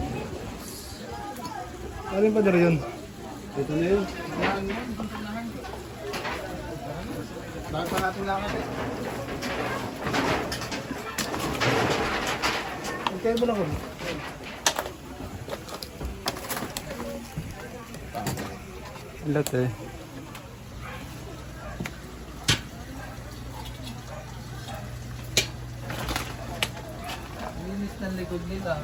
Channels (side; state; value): both; identical; correlation 1.00